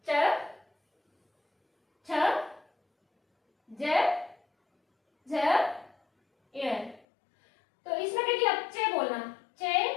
च, छ, ज, झ, य। तो इसमें देखिए अब चे बोलना, चे,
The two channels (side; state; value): right; drops out; at 7.0 s